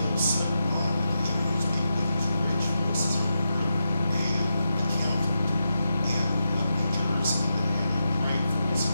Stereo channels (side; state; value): both; inverted; correlation -0.87